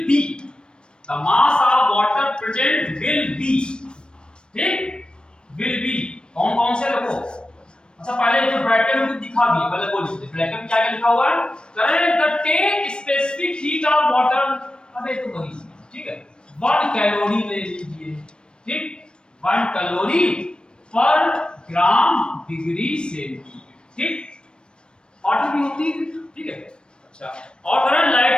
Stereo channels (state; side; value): late; right; 0.053 ms